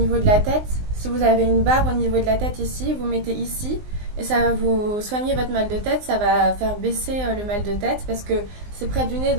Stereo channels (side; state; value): left; late; 19 ms